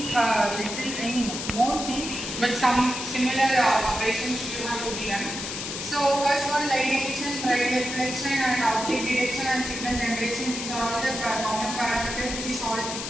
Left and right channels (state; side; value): noise; left; hiss, 6 dB below the sound